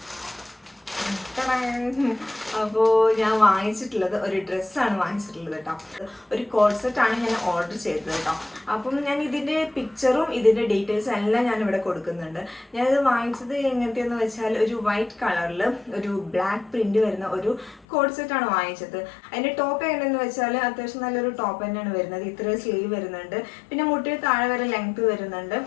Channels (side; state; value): right; drops out; at 17.9 s